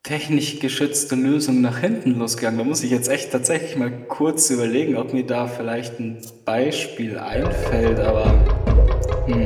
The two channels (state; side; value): identical; both; correlation 1.00